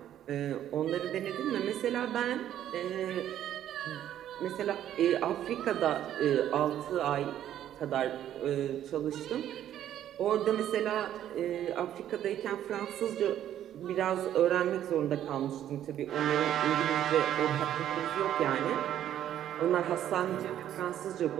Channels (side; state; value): left; quieter; 11.2 dB